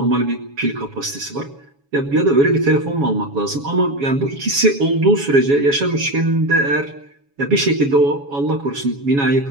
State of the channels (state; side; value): late; left; 7.2 ms